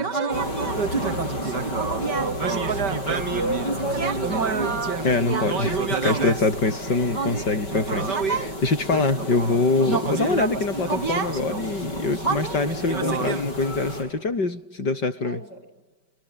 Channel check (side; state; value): right; late; 5.2 ms